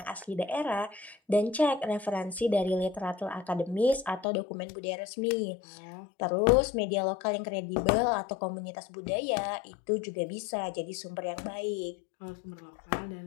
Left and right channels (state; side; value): drops out; right; at 4.2 s